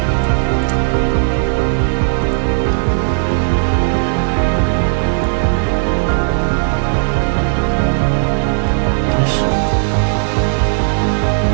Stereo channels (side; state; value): left; silent; digital silence